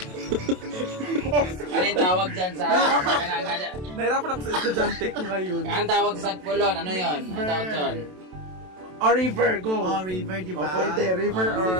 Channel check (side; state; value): left; late; 27 ms